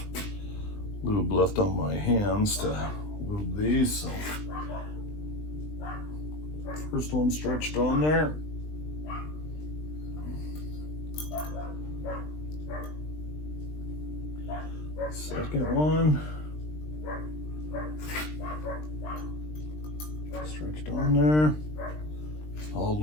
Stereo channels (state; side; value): late; right; 20 ms